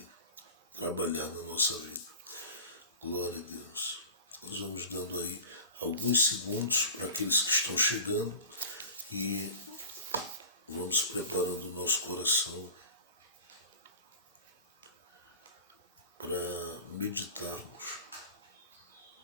trabalhar na nossa vida. Glória a Deus. Nós vamos dando aí alguns segundos para aqueles que estão chegando e vamos preparando o nosso coração para meditarmos.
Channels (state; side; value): inverted; both; correlation -0.37